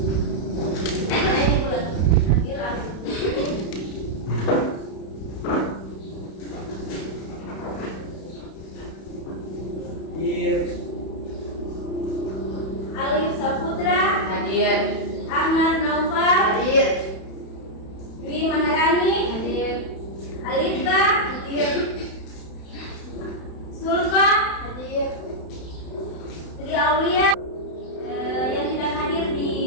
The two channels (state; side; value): late; right; 31 ms